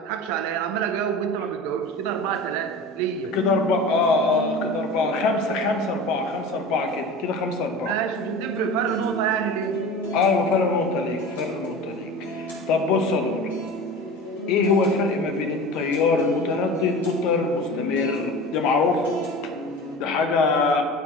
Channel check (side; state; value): both; normal; correlation 0.34